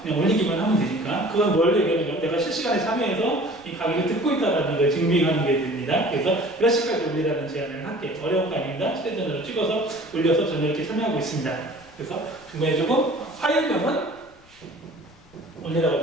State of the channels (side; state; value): left; noise; rumble, 27 dB below the sound